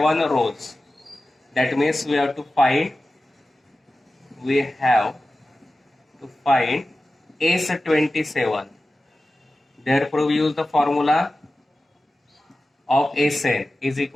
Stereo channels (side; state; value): both; normal; correlation 0.95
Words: rows. That means we have to find S27. Therefore we use the formula of Sn is